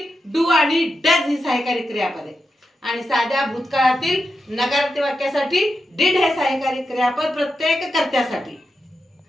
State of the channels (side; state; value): both; normal; correlation 0.88